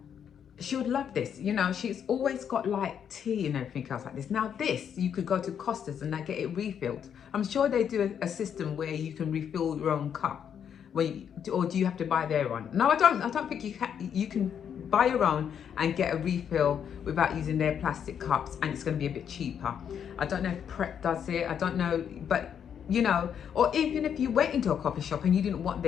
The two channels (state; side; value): quieter; right; 8.3 dB